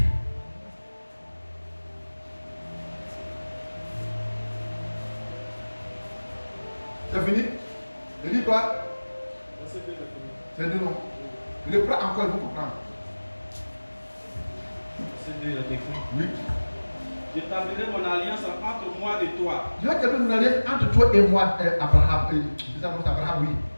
C'est fini? Je dis quoi? C'est deux noms. Je le prends encore, il faut comprendre. C'est deux, il a décrit. Oui. J'établirai mon alliance entre moi et toi. Je vais établir mon alliance entre toi et moi, Abraham. Abraham, oui.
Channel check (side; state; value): both; inverted; correlation -1.00